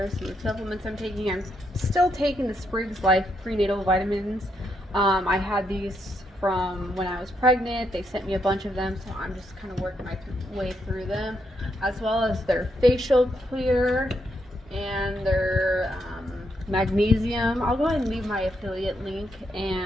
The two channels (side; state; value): both; normal; correlation 0.78